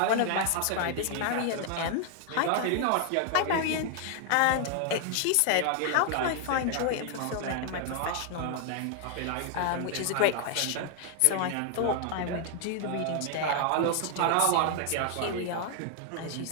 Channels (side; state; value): both; different; correlation 0.00